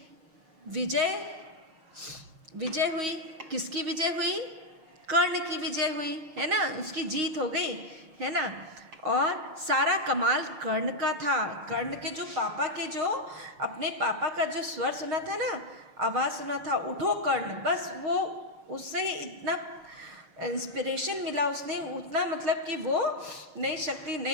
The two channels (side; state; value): left; late; 6.5 ms